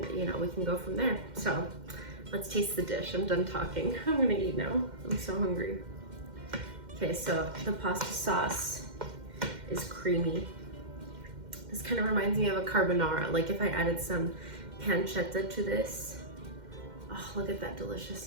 we can go from there. So let's taste the dish. I'm done talking. I'm gonna eat now. I'm so hungry. Okay, so the pasta sauce is creamy. This kind of reminds me of a carbonara, like if I added some pancetta to this. Oh, look at that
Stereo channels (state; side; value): late; left; 2.1 ms